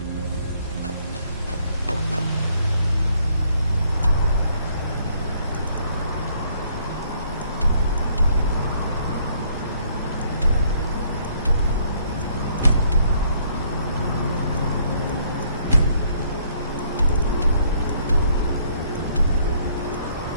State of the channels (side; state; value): both; inverted; correlation -0.65